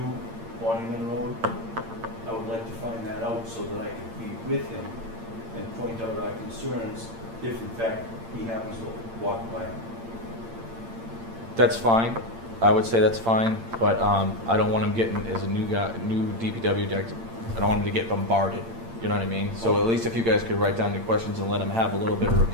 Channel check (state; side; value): late; left; 8.8 ms